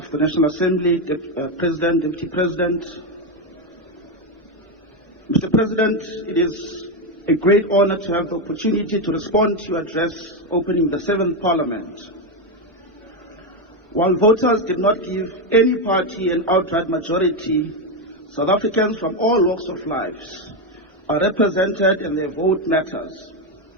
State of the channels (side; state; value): both; normal; correlation 0.08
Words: the National Assembly, President, Deputy President. Mr. President, it is a great honor to have the opportunity to respond to your address opening the 7th Parliament. While voters did not give any party an outright majority, South Africans from all walks of life are represented and their vote matters,